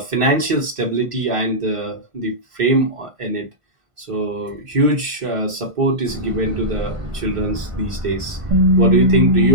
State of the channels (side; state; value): left; late; 1.5 ms